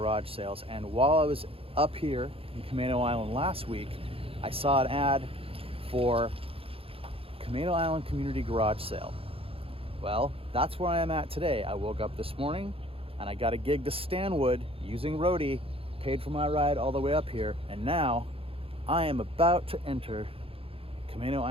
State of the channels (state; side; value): late; left; 0.27 ms